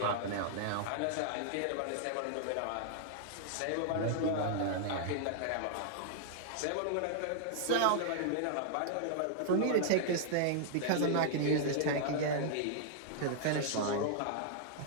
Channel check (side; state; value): both; different; correlation -0.01